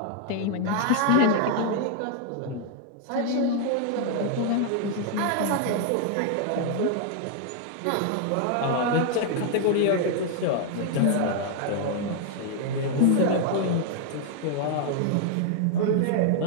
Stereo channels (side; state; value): both; different; correlation 0.00